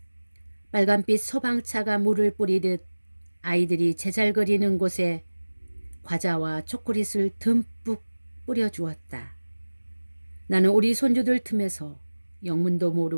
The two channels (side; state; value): both; inverted; correlation -1.00